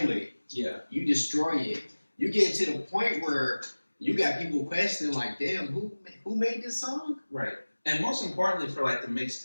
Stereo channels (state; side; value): inverted; both; correlation -1.00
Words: it. Yeah. You destroy it. You get to the point where you got people questioning, like, damn, who made this song? Right. And most importantly for like the